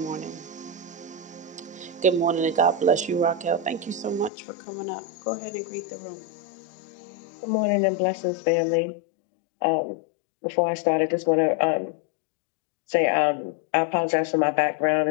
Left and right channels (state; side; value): drops out; right; at 4.3 s